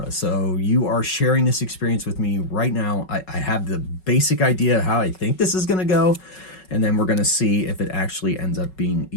so you are sharing this experience with me right now. I have the basic idea of how I think this is going to go, and then we're going to see if it actually ends up being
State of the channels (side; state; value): right; late; 5.4 ms